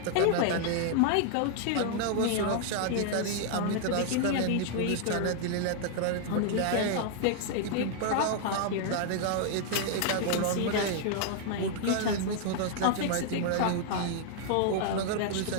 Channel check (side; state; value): both; different; correlation 0.00